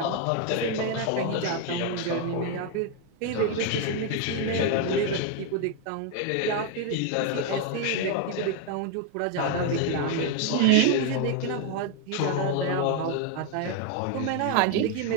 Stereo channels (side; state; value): both; different; correlation 0.01